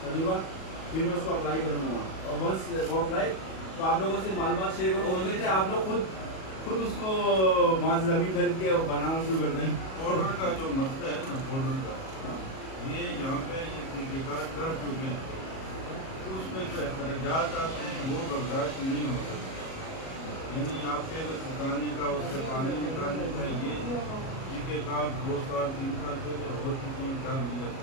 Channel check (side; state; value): right; late; 37 ms